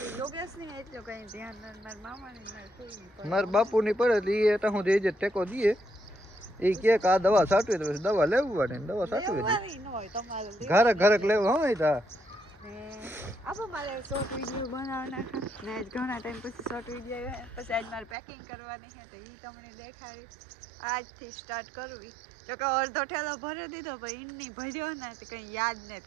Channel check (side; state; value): left; drops out; at 18.2 s